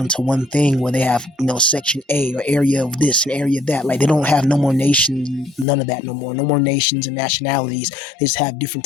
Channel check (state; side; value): drops out; right; at 5.7 s